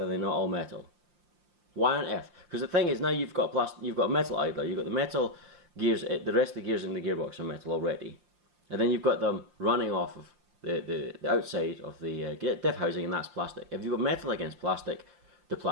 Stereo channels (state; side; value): late; left; 5.8 ms